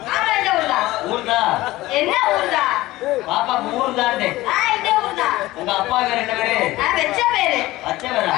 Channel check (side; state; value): right; quieter; 17.8 dB